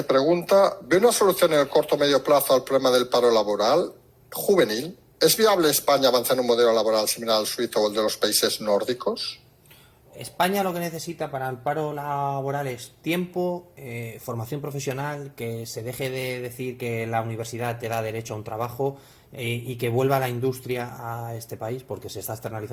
pregunta. ¿Ve una solución en el corto o medio plazo al problema del paro laboral juvenil? ¿Es viable España avanzar en un modelo laboral similar al suizo o el de los países nórdicos? España lo que necesita para el paro laboral es tiempo, formación profesional, que se deje de decir que la universidad te da derecho a un trabajo y que vuelva la industria a este país porque se está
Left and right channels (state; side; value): identical; both; correlation 1.00